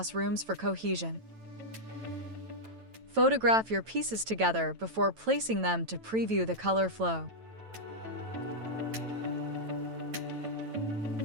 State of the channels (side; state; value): left; late; 9.1 ms